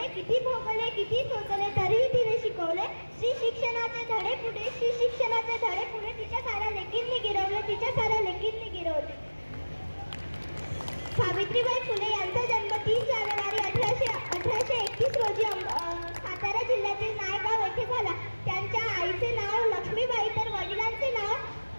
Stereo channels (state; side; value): inverted; both; correlation -1.00